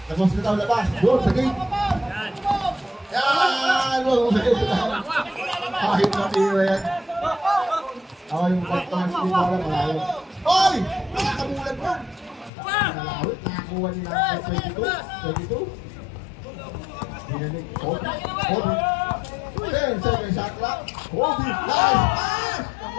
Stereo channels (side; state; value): right; drops out; at 12.5 s